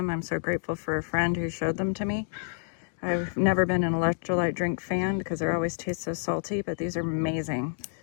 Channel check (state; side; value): silent; right; digital silence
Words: I'm so grateful for a friend who showed them to me. I've never been an electrolyte drink fan because they always taste so salty, but these are amazing.